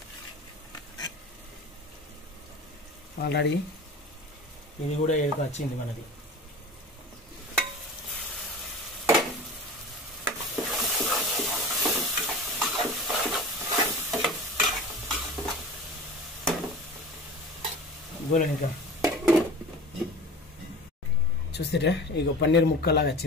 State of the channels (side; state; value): both; normal; correlation 0.36